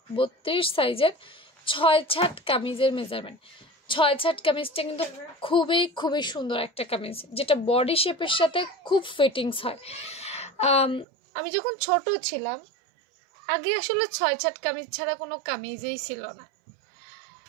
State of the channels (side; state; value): left; drops out; at 11.1 s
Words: 32 সাইজের 6 কামিজের মেজারমেন্ট। 6 কামিজটা কিন্তু খুবই সুন্দর একটা কামিজ, যেটা বডি শেপের সাথে খুব ফিটিংস হয়। আমি যখন ছোট ছিলাম আগে আসলে 6 কামিজ ছাড়া কোনো কামিজই ছিল না।